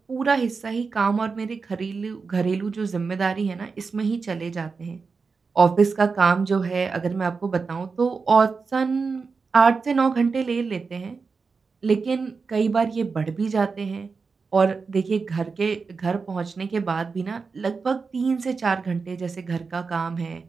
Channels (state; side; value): quieter; left; 4.8 dB